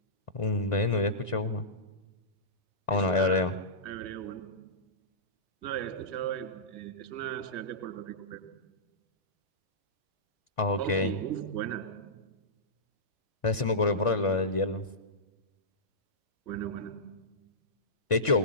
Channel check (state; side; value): late; right; 1.5 ms